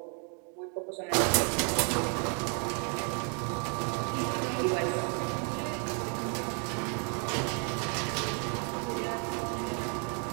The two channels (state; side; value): quieter; left; 39.8 dB